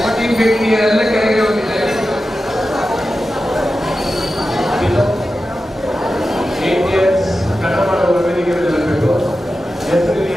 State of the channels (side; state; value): both; normal; correlation 0.92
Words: ಎಲ್ಲ ಕೆಳಗೆ ಹೋಗಿ ದಯವಿಟ್ಟು. ಕನ್ನಡ ಮಾಡುವ ವೇದಿಕೆ ಬರಬೇಕು. ಹೆಸರು